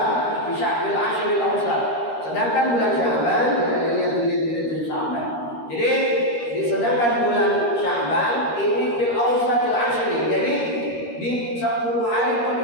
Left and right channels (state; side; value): late; right; 13 ms